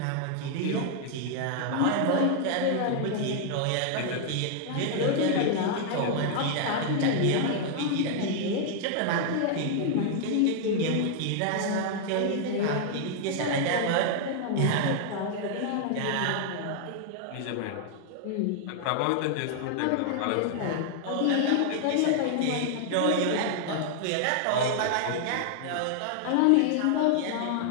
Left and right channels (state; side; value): different; both; correlation 0.00